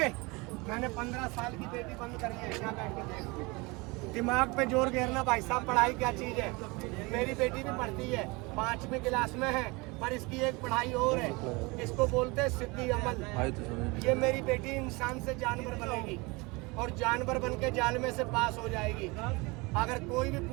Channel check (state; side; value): quieter; left; 25.7 dB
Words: 15 साल की बेटी बंद करी है। क्या बैठ के देख, दिमाग पे जोर घेरना भाई साहब। पढ़ाई क्या चीज है? मेरी बेटी भी पढ़ती है, 5वीं क्लास में है, पर इसकी एक पढ़ाई और है, इसको बोलते हैं सिद्धि अमल। ये मेरी बेटी इंसान से जानवर बनेगी और जानवर बन के जाल में से पास हो जाएगी। अगर कोई भी